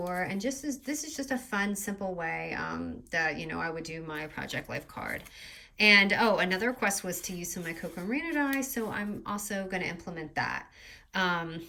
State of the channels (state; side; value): identical; both; correlation 1.00